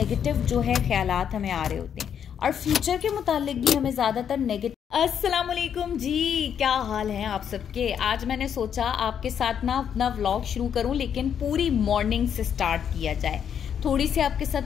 जो है ख्यालात हमें आ रहे होते हैं और फ्यूचर के मुतालिक भी हमें ज़्यादातर नेगेटिव। अस्सलाम वालेकुम जी, क्या हाल है आप सबके। आज मैंने सोचा आपके साथ ना अपना व्लॉग शुरू करूं, लेकिन पूरी मॉर्निंग से स्टार्ट किया जाए। थोड़ी सी आपके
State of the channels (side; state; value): right; quieter; 8.3 dB